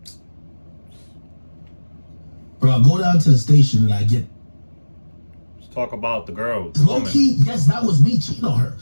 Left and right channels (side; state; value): both; inverted; correlation -1.00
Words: Bro, I go down to the station and I get... Let's talk about the girl. Low key, yes, that was me cheating on her.